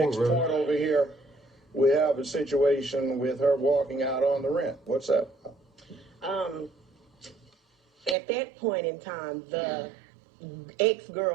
point over here, we have a situation with her walking out on the rent. What's up? At that point in time, the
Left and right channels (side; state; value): left; drops out; at 8.2 s